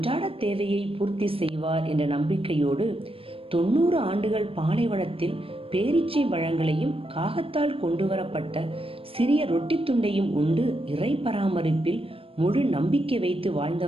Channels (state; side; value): late; left; 0.27 ms